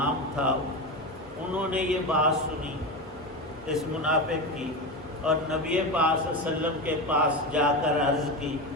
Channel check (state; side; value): normal; both; correlation 0.19